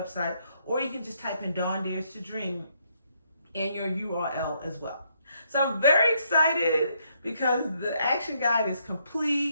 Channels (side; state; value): both; inverted; correlation -0.74